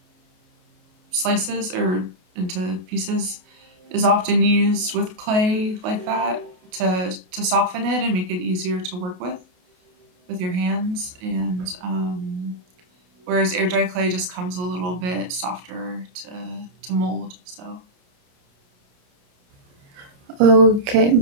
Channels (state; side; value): late; left; 28 ms